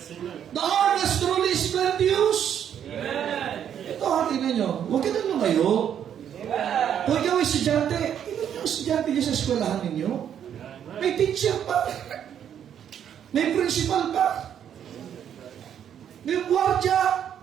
The harvest truly is plenteous. Ito, hatin ninyo, huwag ka nang lumayo. Kung ikaw ay estudyante, ilan yung estudyante niyo sa eskwelahan ninyo? May teacher pa. May principal pa. May gwardiya.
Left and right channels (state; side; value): quieter; left; 9.2 dB